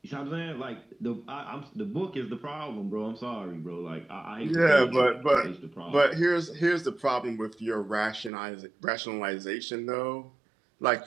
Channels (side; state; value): left; drops out; at 8.3 s